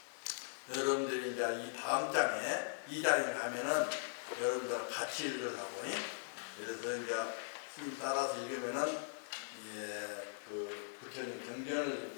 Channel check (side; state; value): right; silent; 51 dB below the other